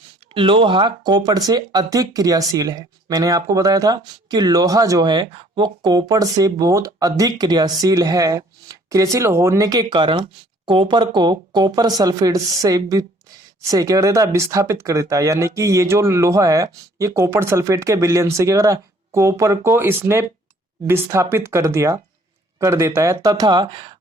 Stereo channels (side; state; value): both; normal; correlation 0.58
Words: लोहा कॉपर से अधिक क्रियाशील है। मैंने आपको बताया था कि लोहा जो है वो कॉपर से बहुत अधिक क्रियाशील है। क्रियाशील होने के कारण कॉपर को कॉपर सल्फेट से क्या कर देता है, विस्थापित कर देता है। यानी कि ये जो लोहा है ये कॉपर सल्फेट के विलयन से क्या कर रहा है, कॉपर को इसने विस्थापित कर देता है, तथा